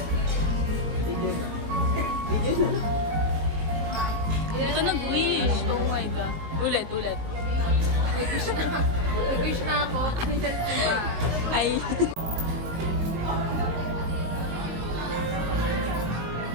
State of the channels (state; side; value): late; left; 19 ms